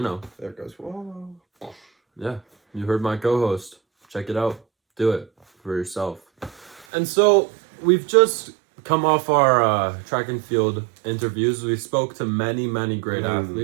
know, there it goes. Whoa. yeah, you heard my co-host. Check it out. Do it for yourself. And so we've just come off our track and field interviews. We spoke to many great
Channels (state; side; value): drops out; left; at 6.9 s